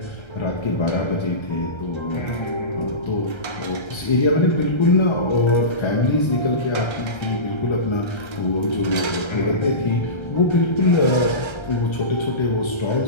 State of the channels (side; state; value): right; late; 1.3 ms